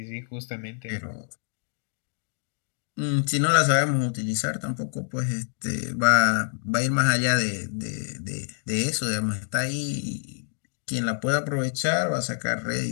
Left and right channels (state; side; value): silent; right; 60 dB below the other